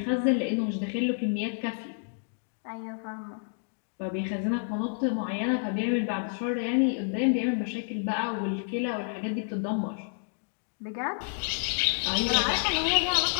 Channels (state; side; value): silent; right; digital silence